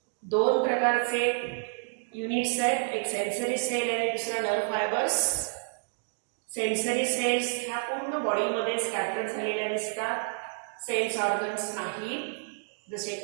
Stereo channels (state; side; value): silent; left; digital silence